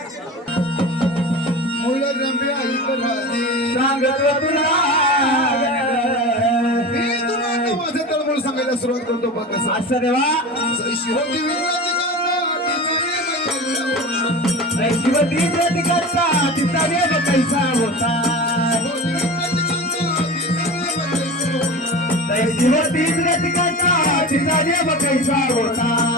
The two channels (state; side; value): normal; both; correlation 0.31